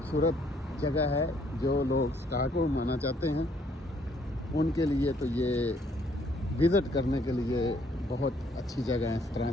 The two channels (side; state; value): both; normal; correlation 0.66